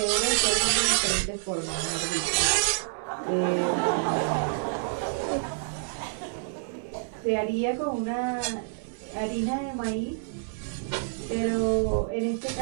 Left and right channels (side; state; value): left; silent; digital silence